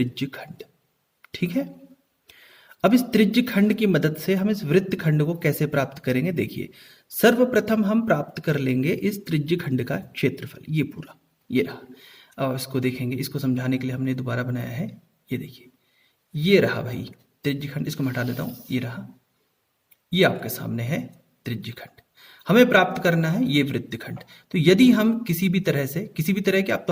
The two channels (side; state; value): both; identical; correlation 1.00